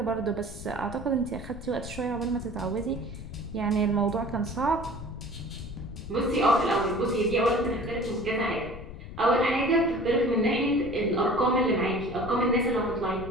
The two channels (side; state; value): left; noise; rumble, 12 dB below the sound